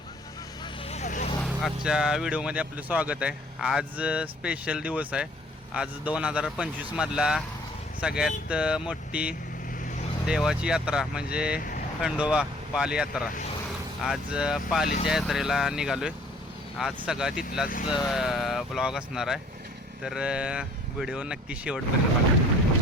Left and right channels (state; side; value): normal; both; correlation 0.55